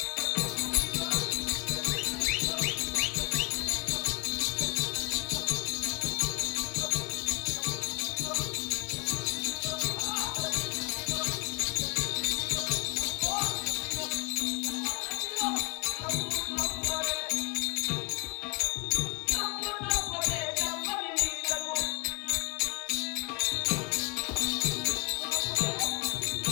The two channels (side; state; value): right; quieter; 26.0 dB